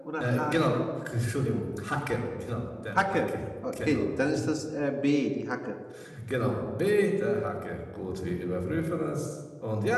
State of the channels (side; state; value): both; identical; correlation 1.00